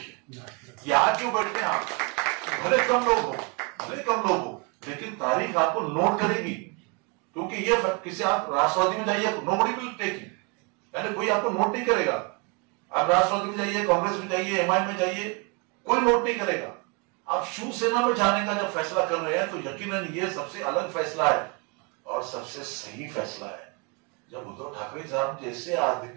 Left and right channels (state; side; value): quieter; left; 31.5 dB